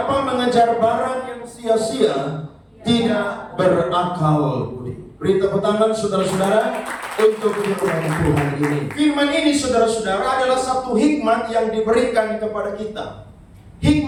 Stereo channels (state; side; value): identical; both; correlation 1.00